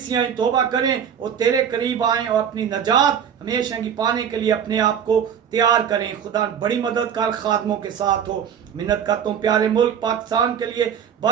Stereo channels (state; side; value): quieter; left; 8.2 dB